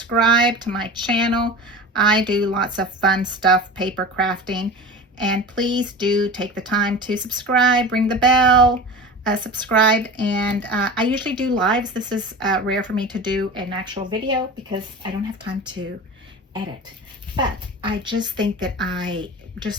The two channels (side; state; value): both; normal; correlation 0.32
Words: to my channel. I do lots of fun stuff, paper crafting. And please do take the time to subscribe, ring the bell, subscribe. And I usually do lives. This is rare for me to do an actual video because I don't have time to edit. But I just think that I